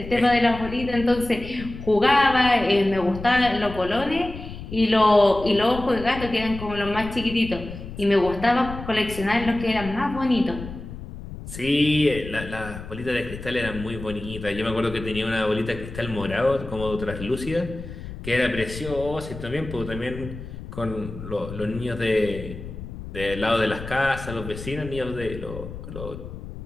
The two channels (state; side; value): noise; left; rumble, 11 dB below the sound